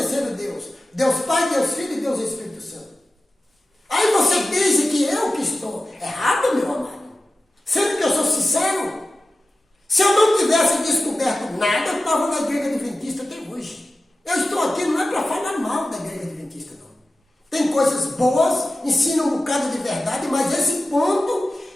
Deus? Deus Pai, Deus Filho e Deus Espírito Santo. Aí você diz que eu que estou errado, meu amado. Sendo que eu sou sincero. Se eu não tivesse descoberto nada, eu estava na igreja adventista até hoje. Eu estou aqui não é para falar mal da igreja adventista, não. Tem coisas boas pessoas, ensinam um bocado de verdade, mas esse ponto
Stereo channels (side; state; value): both; normal; correlation 0.95